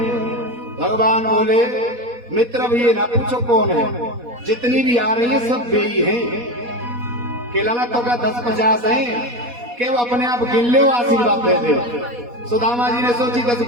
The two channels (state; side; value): late; left; 4.1 ms